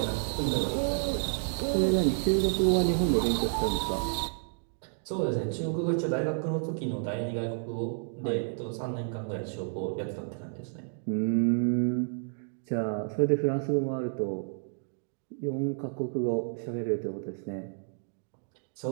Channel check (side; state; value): left; silent; digital silence